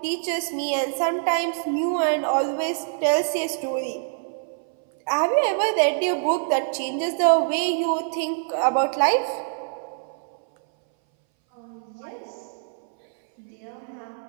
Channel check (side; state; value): left; silent; 60 dB below the other